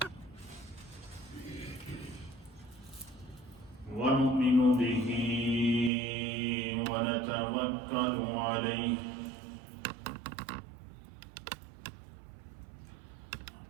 ونؤمن به ونتوكل عليه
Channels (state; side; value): drops out; left; at 5.9 s